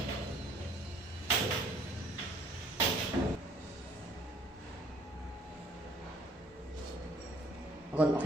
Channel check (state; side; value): normal; both; correlation 0.59